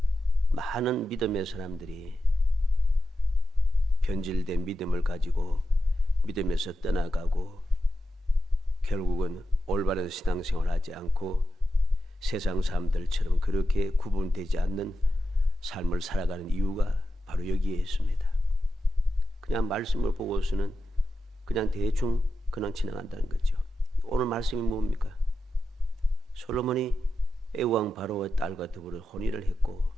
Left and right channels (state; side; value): normal; both; correlation 0.89